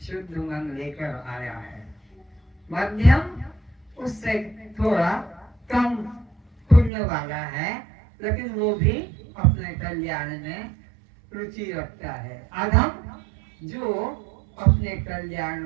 शुद्ध मन लेकर आया है। मध्यम उससे थोड़ा कम पुण्य वाला है, लेकिन वो भी अपने कल्याण में रुचि रखता है। अधम जो अपने कल्याण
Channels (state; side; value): drops out; left; at 6.9 s